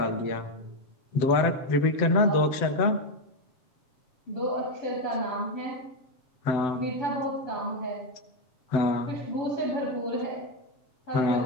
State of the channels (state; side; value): late; right; 7.8 ms